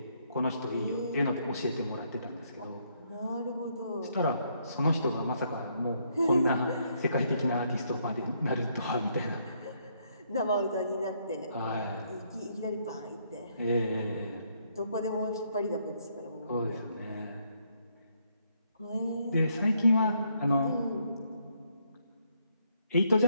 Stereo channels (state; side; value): inverted; both; correlation -0.72